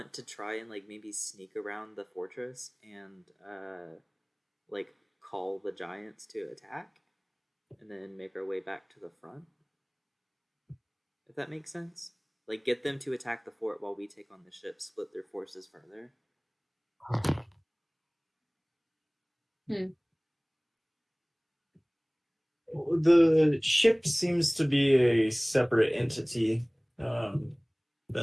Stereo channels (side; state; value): both; identical; correlation 1.00